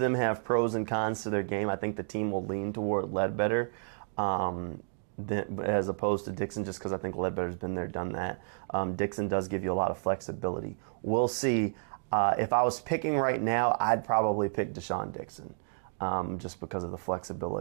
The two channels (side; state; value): left; silent; digital silence